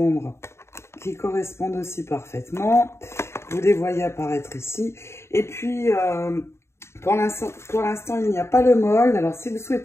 aussi parfaitement. Vous les voyez apparaître ici. Et puis, pour l'instant, il n'y a pas le mold. Alors, si vous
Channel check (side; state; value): right; late; 0.13 ms